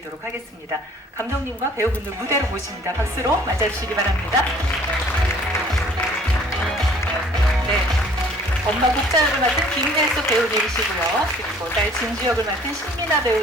하겠습니다. 감독님과 배우분들 무대로 모십니다. 박수로 맞아주시기 바랍니다. 네, 엄마 국자 역을 맡은 김혜수 배우님이시고요. 그리고 딸 진주 역을 맡은 신민아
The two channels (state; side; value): normal; both; correlation 0.55